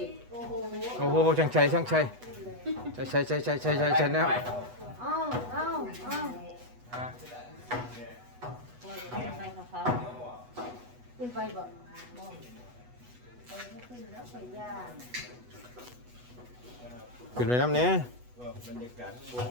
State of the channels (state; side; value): late; left; 8.1 ms